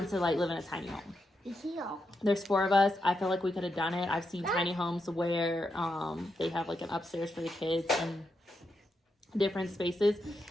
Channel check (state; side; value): normal; both; correlation 0.84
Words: to like live in a tiny home. There's 4 of us. I feel like we could have done it. I've seen tiny homes where they have like an upstairs for the kids and different spaces,